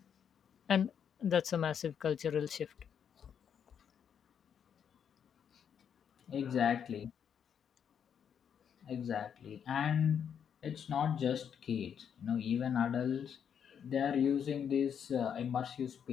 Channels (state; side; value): quieter; right; 8.0 dB